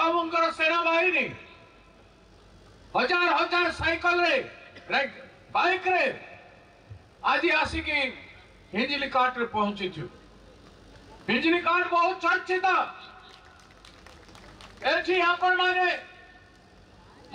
सेना बाहिनी हजार हजार साइकिल रे बाइक रे आज आसिकी हिंजली काट रे पहुंची छु हिंजली काट बहुत चर्चित एठी आपण माने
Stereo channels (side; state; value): both; identical; correlation 1.00